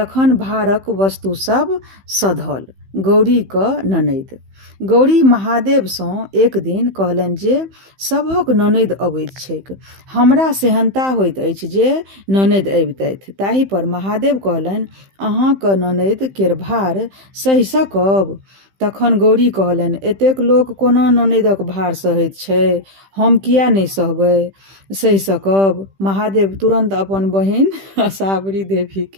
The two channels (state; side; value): late; left; 15 ms